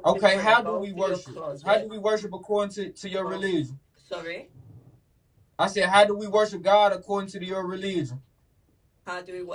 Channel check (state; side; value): identical; both; correlation 1.00